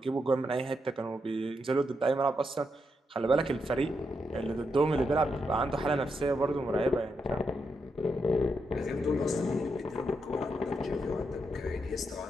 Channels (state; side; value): normal; both; correlation 0.82